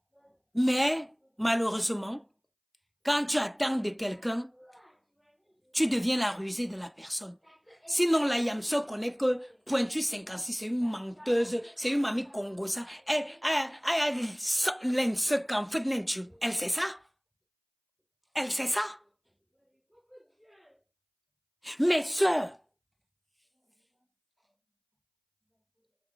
Mais, malheureusement, quand tu attends de quelqu'un, tu deviens la rusée de la personne. Sinon, la Yamso connaît que Pointu 56, c'est une menteuse, c'est une mamie congosa. Elle sait ça. Elle sait ça. Mes sœurs,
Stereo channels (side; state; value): both; identical; correlation 1.00